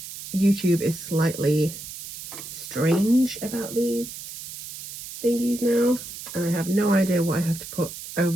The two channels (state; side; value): noise; right; hiss, 11 dB below the sound